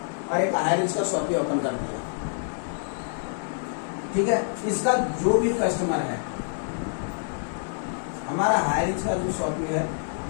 और एक हाईरिच का शॉपी ओपन कर दिया। ठीक है, इसका जो भी कस्टमर है, हमारा हाईरिच का जो शॉपी है,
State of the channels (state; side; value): silent; right; 60 dB below the other